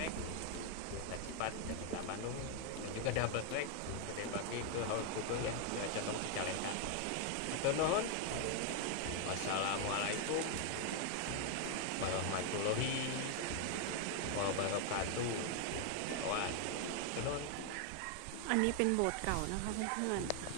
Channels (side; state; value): both; different; correlation 0.00